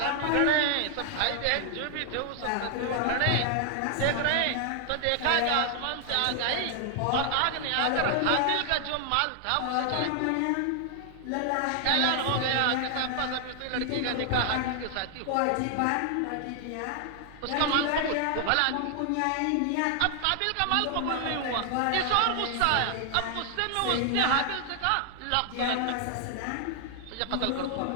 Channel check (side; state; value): both; different; correlation 0.00